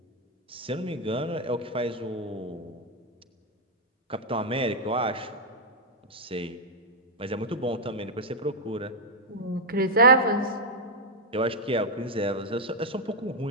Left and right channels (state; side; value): normal; both; correlation -0.01